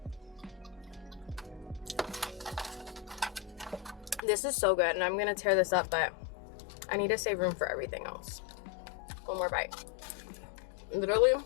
This is so good, and I'm gonna tear this up, but I need to save room for everything else. One more bite. Literally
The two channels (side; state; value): right; drops out; at 4.2 s